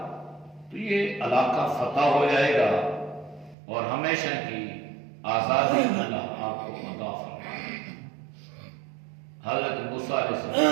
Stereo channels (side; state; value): left; drops out; at 3.6 s